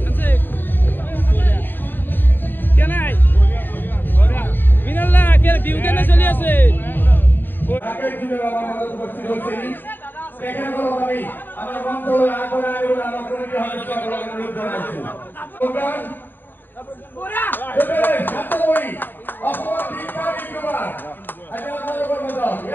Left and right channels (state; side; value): late; right; 0.093 ms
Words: আছে কে নাই মিনাল্লা কে বিহু কেনে চলি আছে আগের দিনের আমার মধ্যে উপস্থিত হচ্ছে এখানে কোনো আমি আমার মন্ত্রণালয় আগরে আগরে আমার কমিটি হবে সকল অনুরোধ জানাচ্ছি প্রোগ্রাম এবারে ছাত্রই অসম দীক্ষা বিদ্যমান আচ্ছা আপনাদের কর্মদল